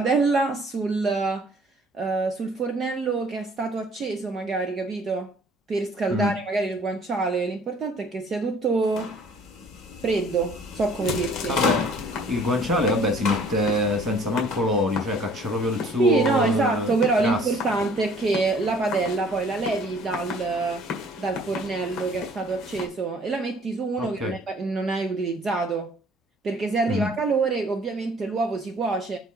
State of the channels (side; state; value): both; normal; correlation 0.55